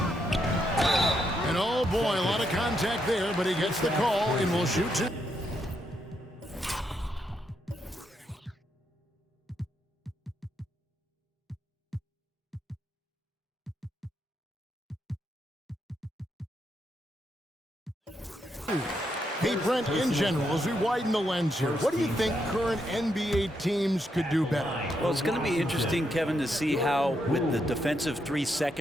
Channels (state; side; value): normal; both; correlation 0.80